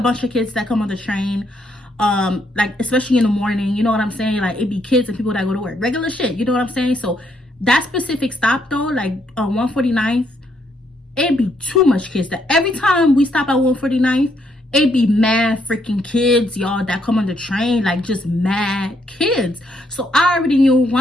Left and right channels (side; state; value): both; normal; correlation 0.74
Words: of kids that come on the train, like, especially in the morning, you know what I'm saying? Like, it be kids and people that go to work, regular shit, you know what I'm saying? So that specific stop though, like 149th, it be too much kids. That every time we stop at 149th, it be mad freaking kids, y'all, that come on the train, like just mad kids. So I already knew